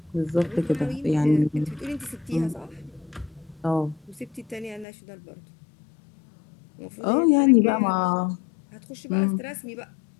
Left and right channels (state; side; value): drops out; right; at 4.9 s